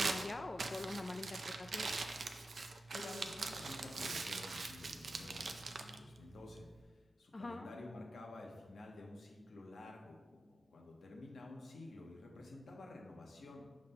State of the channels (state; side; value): normal; both; correlation 0.91